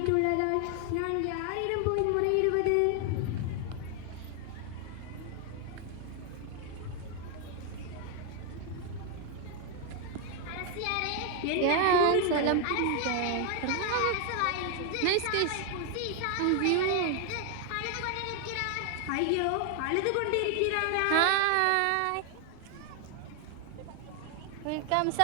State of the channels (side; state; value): both; different; correlation 0.00